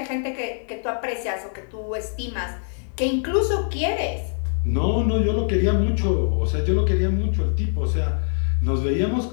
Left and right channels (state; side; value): silent; right; 56 dB below the other